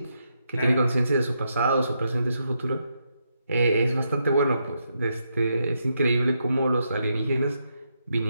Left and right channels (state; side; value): inverted; both; correlation -0.81